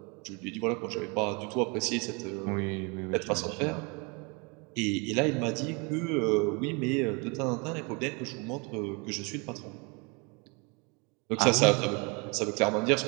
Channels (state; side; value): quieter; left; 30.8 dB